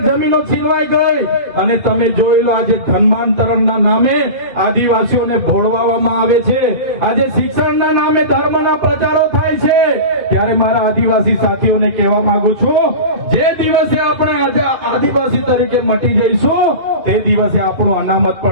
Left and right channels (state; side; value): late; left; 2.2 ms